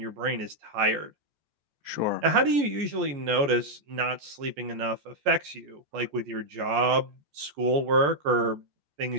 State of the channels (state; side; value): late; left; 14 ms